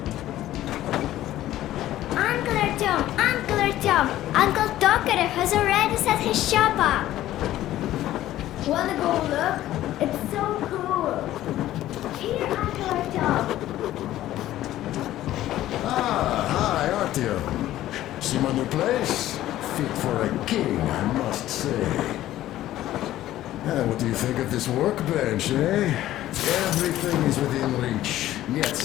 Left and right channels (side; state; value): right; quieter; 14.0 dB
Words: Uncle Tokarev has already set his shop up. Wanna go look? It's so cool. Here, Uncle Artyom. Ah, hi, Artyom. See my new place? Fit for a king, I must say. What do you think of this workbench, eh? Everything is within reach,